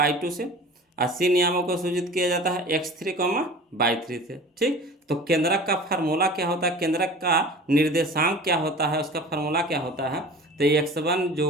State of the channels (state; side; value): normal; both; correlation 0.40